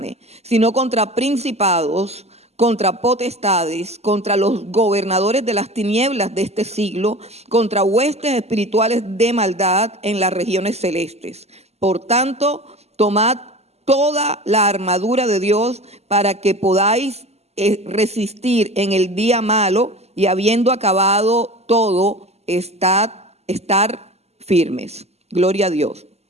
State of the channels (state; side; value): late; left; 0.30 ms